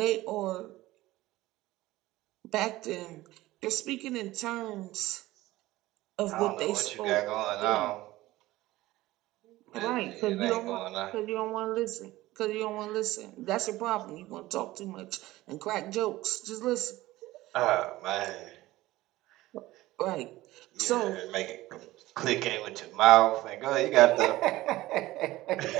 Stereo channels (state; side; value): quieter; left; 17.5 dB